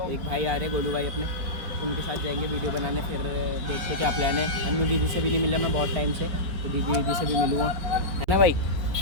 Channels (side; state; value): left; late; 5.0 ms